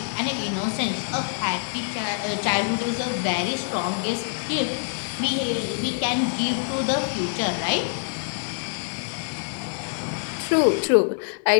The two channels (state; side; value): silent; right; digital silence